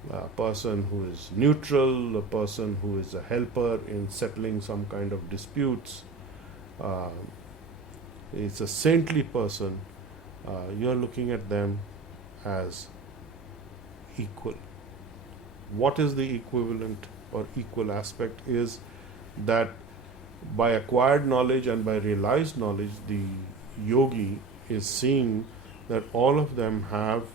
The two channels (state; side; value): quieter; left; 4.0 dB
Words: a person who is neutral, a person who is a helper in settling some kind of disputes, it's a saintly person, you are looking at them as equal. What is the equivalent or equal aspect is that by acquired knowledge and by realized knowledge, the yogi is seeing that all of them have